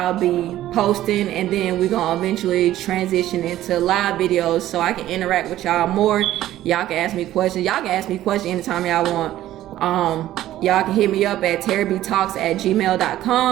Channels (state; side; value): quieter; left; 13.8 dB